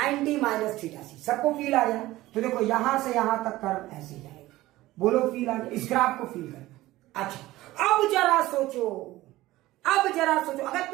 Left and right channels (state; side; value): quieter; left; 17.2 dB